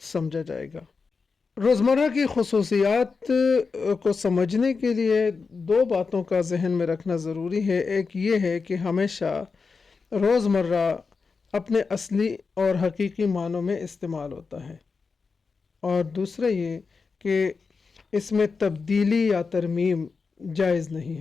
سمجھا جائے گا۔ روزمرہ کی خصوصیات کو سمجھنے کے لیے دو باتوں کا ذہن میں رکھنا ضروری ہے۔ ایک یہ ہے کہ ہمیشہ روزمرہ اپنے اصلی اور حقیقی معنوں میں استعمال ہوتا ہے، اور دوسرا یہ کہ اس میں تبدیلی یا ترمیم جائز نہیں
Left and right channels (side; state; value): right; quieter; 4.8 dB